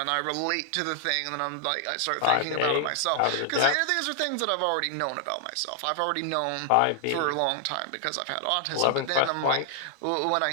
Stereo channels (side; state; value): both; different; correlation 0.00